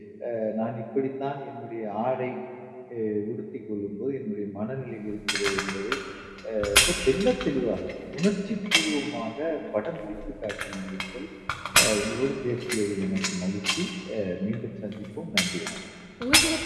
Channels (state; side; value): identical; both; correlation 1.00